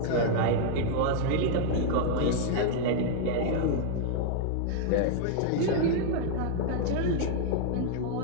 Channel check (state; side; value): different; both; correlation 0.00